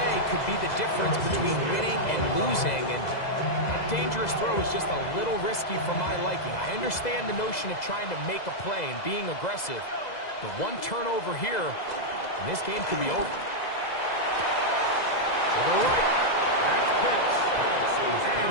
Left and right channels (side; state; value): right; late; 2.0 ms